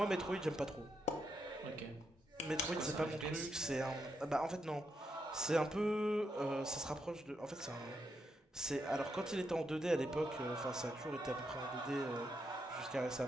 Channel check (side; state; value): both; normal; correlation 0.81